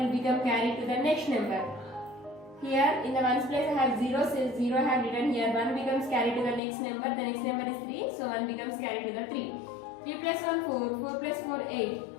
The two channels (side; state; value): right; drops out; at 6.6 s